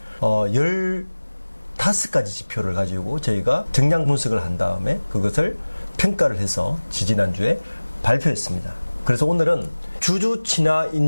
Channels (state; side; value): inverted; both; correlation -1.00